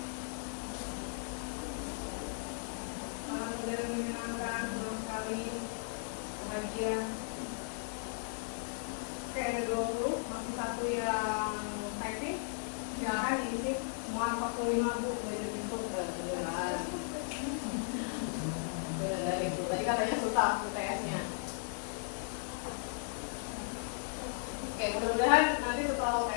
menyenangkan, senang sekali, bahagia. Oke, ada 20, masih satu yang typing. Silakan diisi semua 45, Bu. Belajar itu beneran. Bener itu. Tadi katanya susah UTS-nya. Oke, mudah-mudahan nanti setelah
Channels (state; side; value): silent; right; digital silence